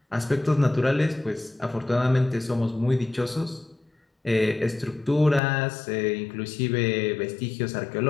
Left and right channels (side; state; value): right; drops out; at 5.4 s